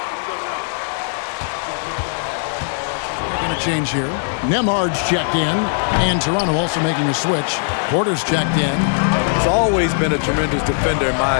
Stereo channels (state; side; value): silent; right; digital silence